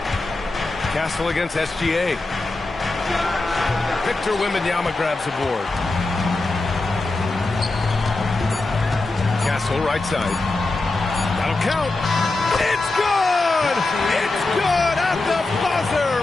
Castle against SGA. Victor Wembanyama grabs the board. Castle right side. That'll count. It's good! It's good at the buzzer!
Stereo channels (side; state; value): right; quieter; 3.2 dB